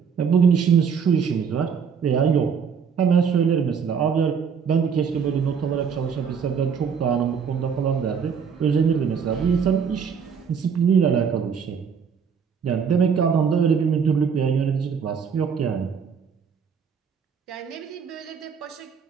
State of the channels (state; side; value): quieter; left; 6.6 dB